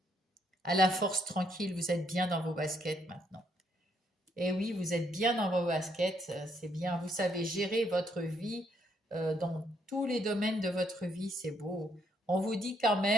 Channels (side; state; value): both; normal; correlation 0.72